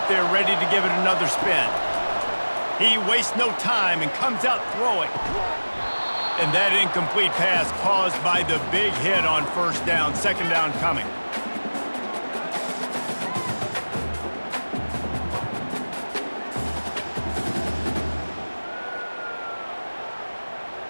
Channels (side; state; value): both; inverted; correlation -1.00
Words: there ready to give it another spin. He wastes no time and comes out throwing. And that incomplete pass caused by the big hit on 1st down. 2nd down coming.